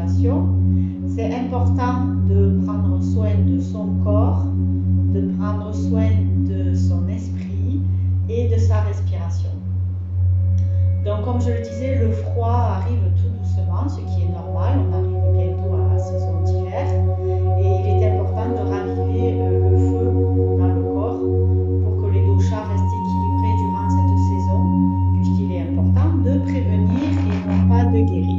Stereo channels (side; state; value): both; identical; correlation 1.00